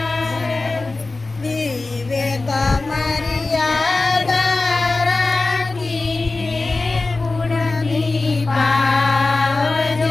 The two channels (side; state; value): right; quieter; 3.4 dB